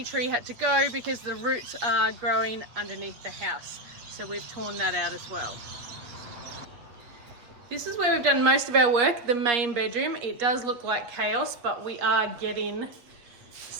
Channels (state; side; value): late; left; 8.2 ms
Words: tree had to go because the roots are growing underneath the house. So we've torn that out as well. This is where we've done most of our work, the main bedroom. It does look like chaos, but we are getting